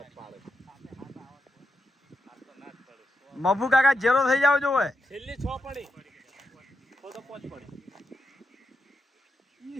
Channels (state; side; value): normal; both; correlation 0.85